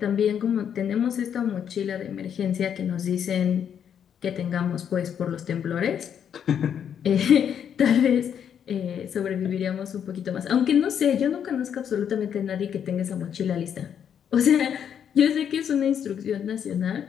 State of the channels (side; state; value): right; quieter; 8.5 dB